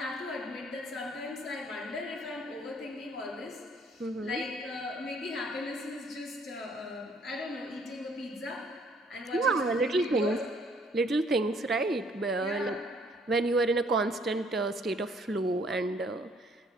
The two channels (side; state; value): both; normal; correlation 0.62